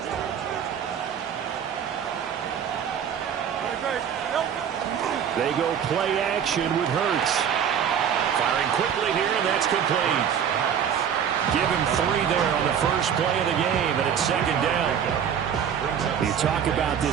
They go play action with Hurts. Firing quickly here, and that's complete. Give him 3 there on the first play of the game, and it's second down. You talk about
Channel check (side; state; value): left; quieter; 8.3 dB